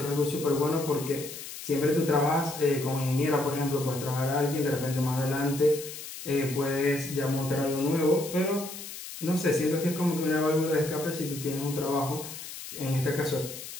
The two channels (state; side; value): noise; left; hiss, 11 dB below the sound